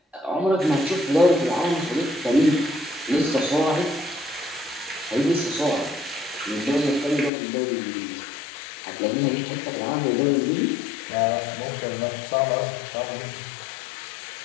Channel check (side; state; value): right; drops out; at 7.3 s